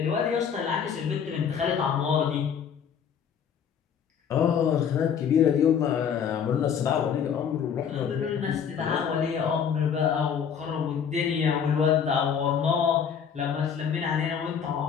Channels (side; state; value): right; quieter; 7.6 dB